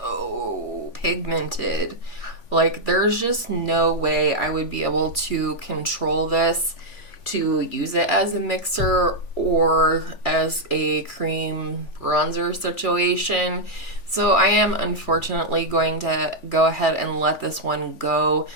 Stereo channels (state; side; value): late; right; 3.5 ms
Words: pigmented. Like, there's just no way I would be able to control this to use it as a mixer or as a cream bronzer situation. So I am unfortunately going to go ahead and let this one go.